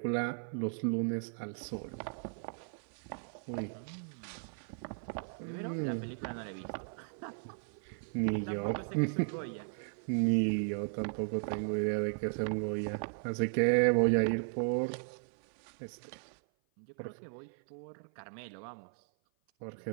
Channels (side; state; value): left; silent; 54 dB below the other